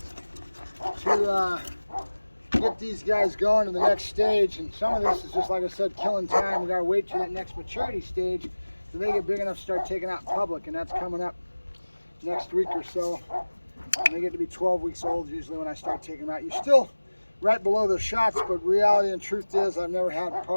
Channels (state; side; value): inverted; both; correlation -1.00